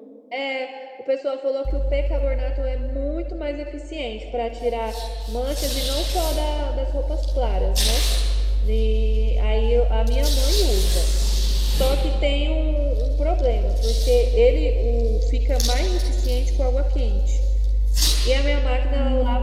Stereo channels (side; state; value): both; identical; correlation 1.00